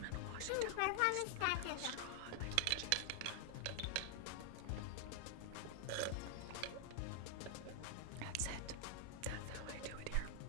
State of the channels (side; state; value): both; different; correlation 0.00